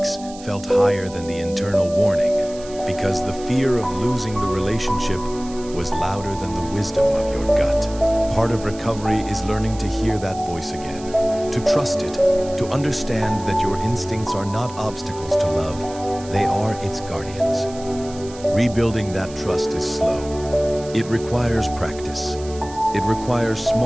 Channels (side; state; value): right; noise; hiss, 18 dB below the sound